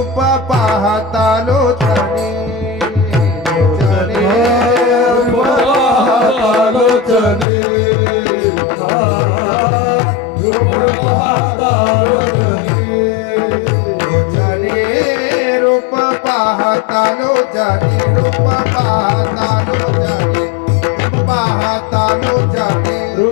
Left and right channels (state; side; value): drops out; right; at 7.5 s